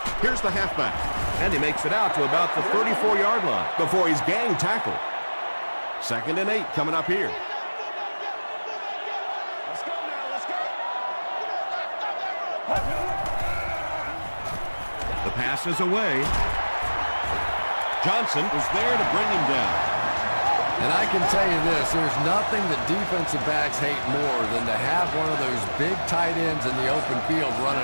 Here's the halfback, and he makes it out to about the 34-yard line before he's gang tackled. 2nd and 8 coming up here. The pass is away. Johnson was there to bring him down. And I can tell you this, there's nothing that defensive backs hate more than to have one of those big tight ends in the open field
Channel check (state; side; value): inverted; both; correlation -1.00